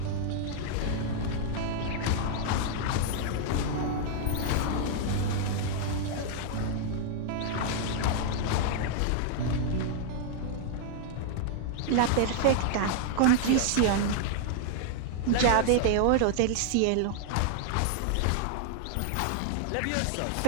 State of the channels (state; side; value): different; both; correlation 0.00